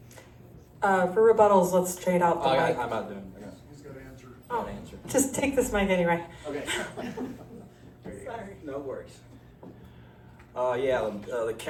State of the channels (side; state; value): both; identical; correlation 1.00